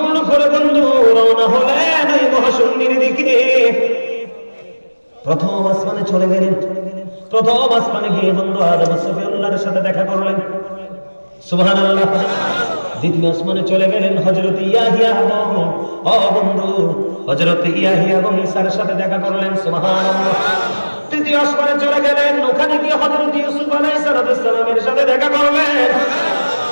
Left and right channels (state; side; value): inverted; both; correlation -1.00